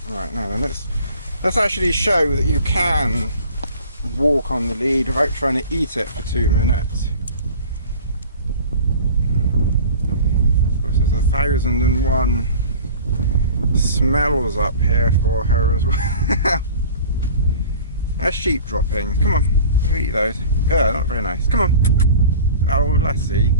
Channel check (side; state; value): both; inverted; correlation -0.43